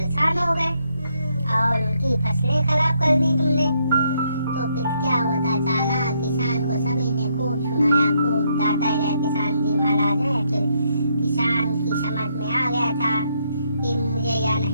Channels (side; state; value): both; inverted; correlation -0.75